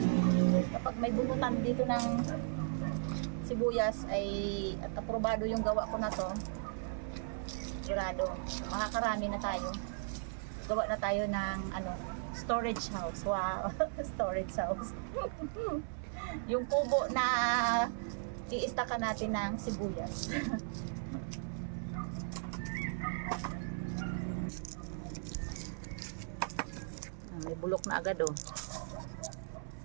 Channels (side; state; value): left; silent; 53 dB below the other